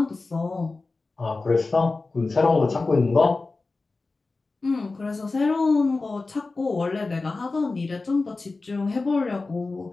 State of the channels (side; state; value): right; quieter; 3.6 dB